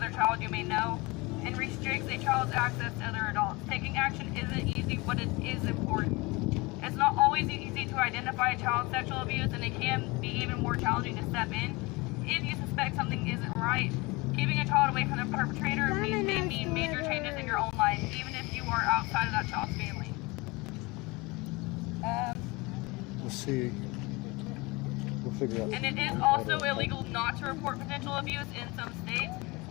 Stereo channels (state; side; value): quieter; right; 24.5 dB